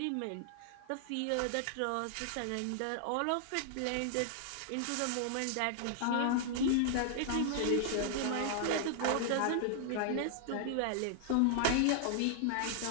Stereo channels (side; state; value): both; different; correlation -0.01